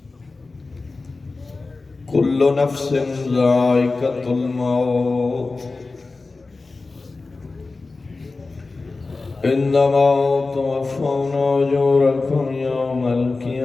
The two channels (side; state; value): right; quieter; 3.7 dB